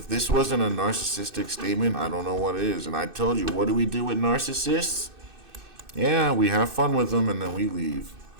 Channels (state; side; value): late; left; 2.6 ms